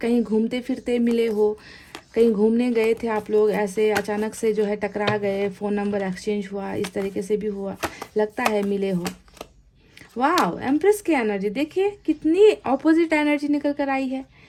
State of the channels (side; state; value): both; identical; correlation 1.00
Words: घूमते फिरते मिले हो, कहीं घूमने गए थे आप लोग, ऐसे अचानक से जो है टकरा गए, फ़ोन नंबर एक्सचेंज हुआ, इस तरीके से भी हुआ, लगता है मिले हो। वाह, एम्प्रेस की एनर्जी देखिए, कितनी ऑपोजिट एनर्जी निकल कर आई है।